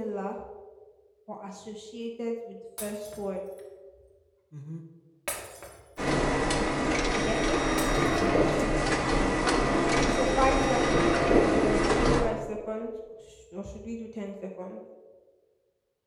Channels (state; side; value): identical; both; correlation 1.00